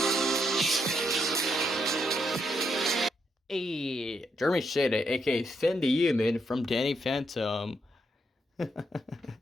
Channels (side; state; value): both; normal; correlation 0.78